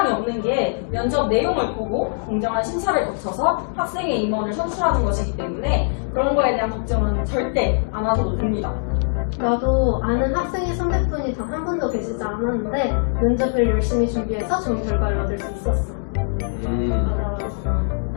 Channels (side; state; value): right; silent; 64 dB below the other